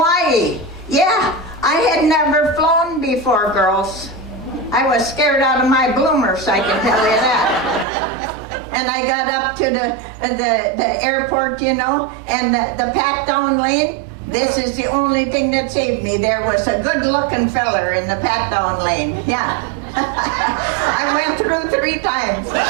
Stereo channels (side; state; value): left; drops out; at 7.9 s